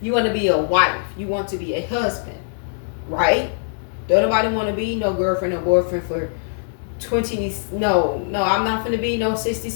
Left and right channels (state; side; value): silent; right; digital silence